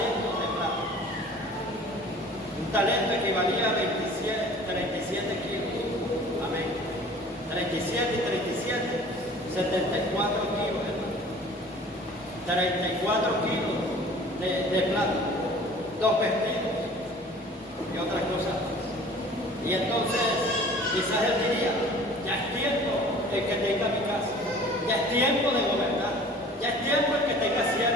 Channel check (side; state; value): both; normal; correlation 0.47